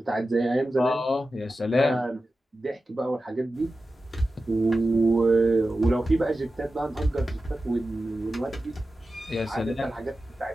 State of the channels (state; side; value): normal; both; correlation 0.93